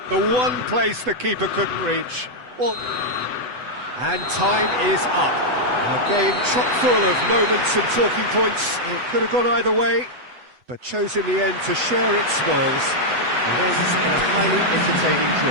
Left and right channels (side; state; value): left; late; 8.0 ms